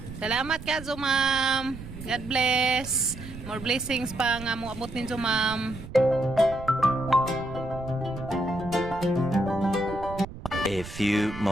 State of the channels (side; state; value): right; noise; rumble, 13 dB below the sound